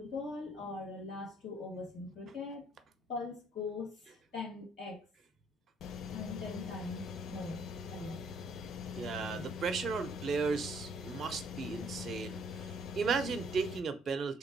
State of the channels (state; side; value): normal; both; correlation 0.64